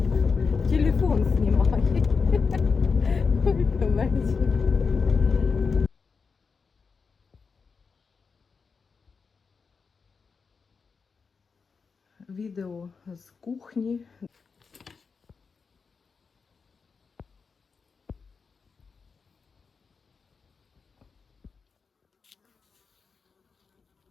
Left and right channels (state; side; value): quieter; right; 5.2 dB